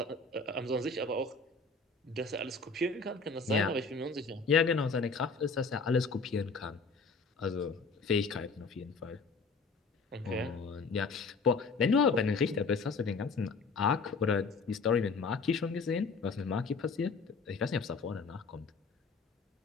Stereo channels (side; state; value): right; quieter; 4.2 dB